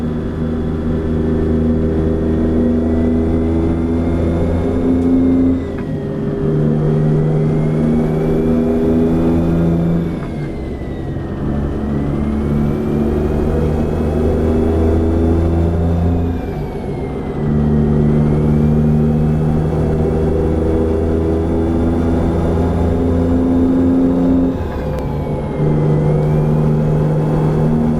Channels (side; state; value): both; identical; correlation 1.00